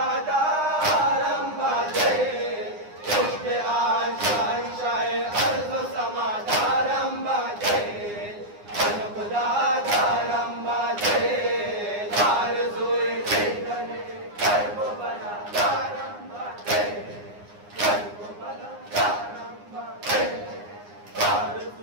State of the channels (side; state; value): left; late; 9.7 ms